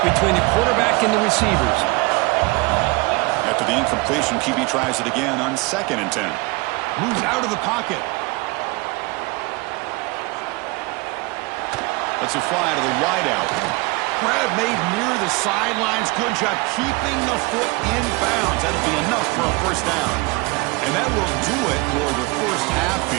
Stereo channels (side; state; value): left; quieter; 25.4 dB